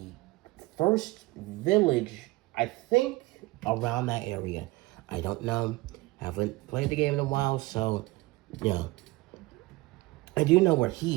first village, I think, around that area. I don't know. Haven't played the game in a while, so, yeah. I do know where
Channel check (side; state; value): left; quieter; 21.2 dB